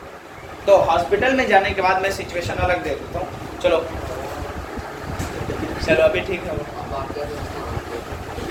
तो हॉस्पिटल में जाने के बाद मैं सिचुएशन अलग दे देता हूँ। चलो चलो अभी ठीक है।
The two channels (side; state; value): both; identical; correlation 1.00